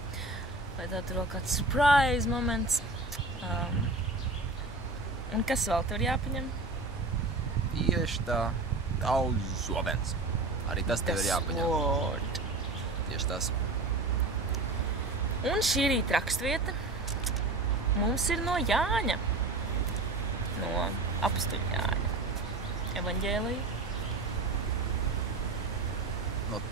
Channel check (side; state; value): left; quieter; 3.2 dB